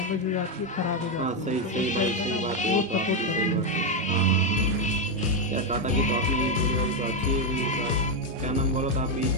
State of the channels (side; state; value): both; normal; correlation 0.05